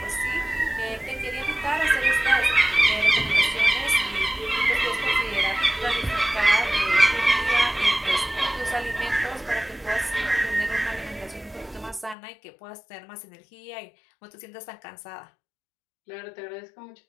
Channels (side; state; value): right; drops out; at 12.2 s